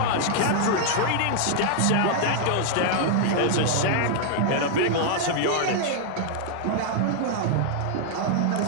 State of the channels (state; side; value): different; both; correlation -0.01